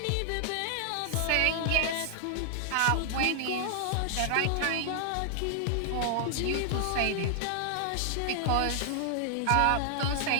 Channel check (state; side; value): different; both; correlation 0.00